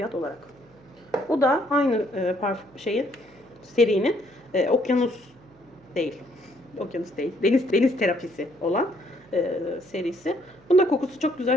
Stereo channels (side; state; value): right; noise; hum, 29 dB below the sound